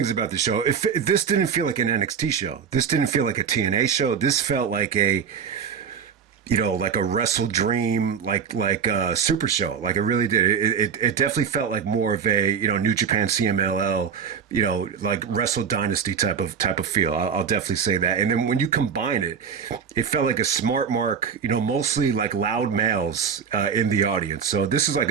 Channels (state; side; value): quieter; left; 6.9 dB